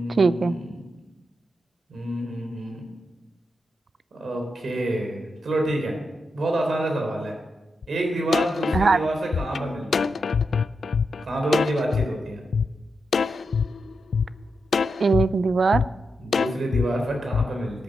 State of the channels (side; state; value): both; normal; correlation 0.86